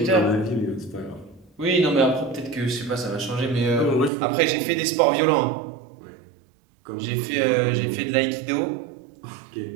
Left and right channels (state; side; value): drops out; left; at 4.1 s